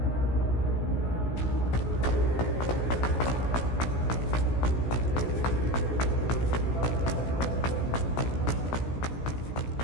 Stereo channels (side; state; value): right; late; 16 ms